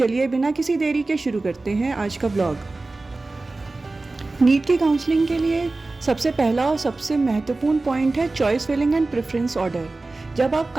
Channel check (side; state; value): left; quieter; 3.3 dB